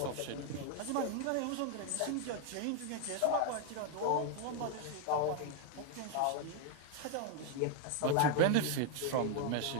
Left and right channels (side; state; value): both; different; correlation 0.01